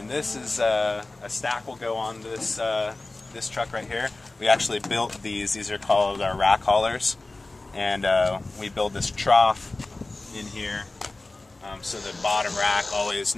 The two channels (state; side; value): quieter; right; 3.1 dB